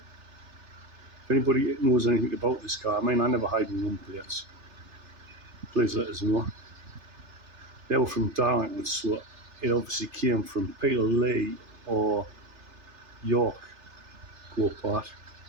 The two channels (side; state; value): left; late; 3.3 ms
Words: If anybody knows anything about this car, I mean, I never hide my number plates. Please let us know. They were from Darlington, so it obviously came from Peterlee or York Go-Kart.